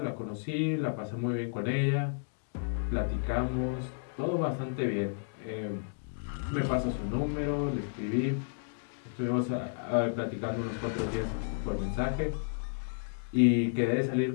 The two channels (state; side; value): silent; right; digital silence